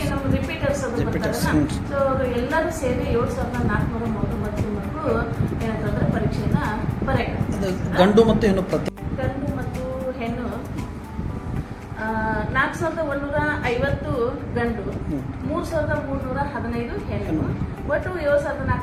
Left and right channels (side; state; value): both; identical; correlation 1.00